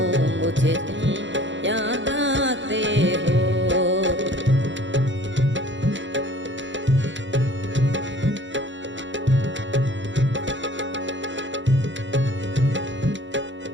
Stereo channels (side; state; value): left; late; 0.54 ms